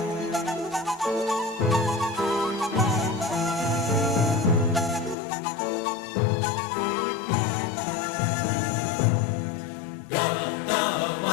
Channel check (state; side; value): drops out; right; at 5.2 s